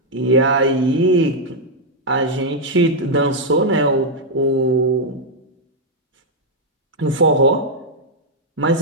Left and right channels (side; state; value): both; normal; correlation -0.02